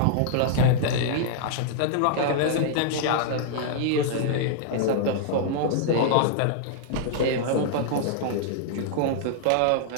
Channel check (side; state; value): both; different; correlation -0.01